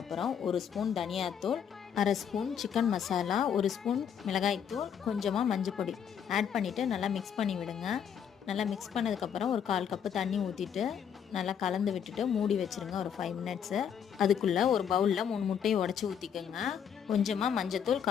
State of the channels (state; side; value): quieter; right; 8.1 dB